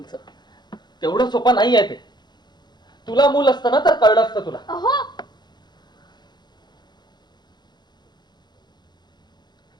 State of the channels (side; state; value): right; late; 0.21 ms